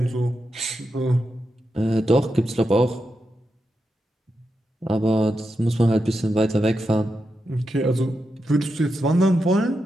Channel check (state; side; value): normal; both; correlation 0.87